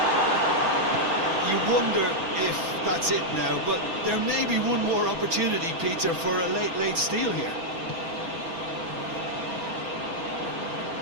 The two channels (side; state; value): left; late; 6.1 ms